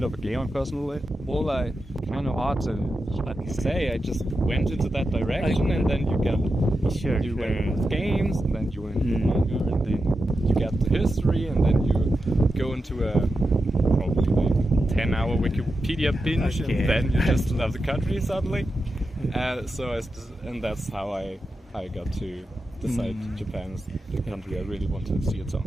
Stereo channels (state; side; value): normal; both; correlation 0.89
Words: of a gamer personally, well, I kind of hard to say. I just went into that direction, and then you get you went into games, and then you went into manga, and then you get the history, and then you go into a probably 10-hour Wikipedia binge, and then you just love the country suddenly. And that's how I got to decide Japan is the country I really want to see at some